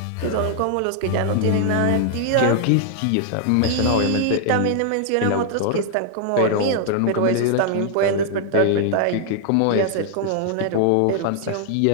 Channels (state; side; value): different; both; correlation 0.00